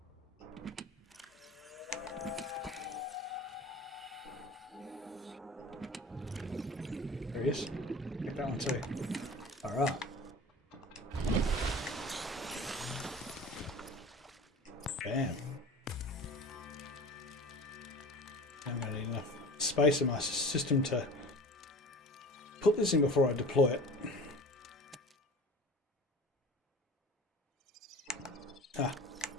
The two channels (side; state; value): both; normal; correlation 0.39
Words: There he is. Get that one too. Alright. Bam. I'm going to need enough space in my system to put this in before I deploy it. Ah.